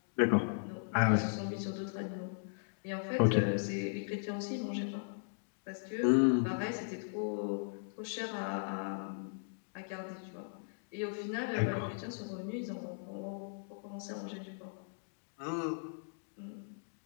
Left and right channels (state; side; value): silent; right; digital silence